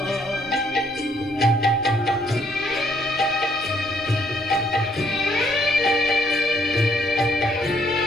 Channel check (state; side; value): noise; left; rumble, 23 dB below the sound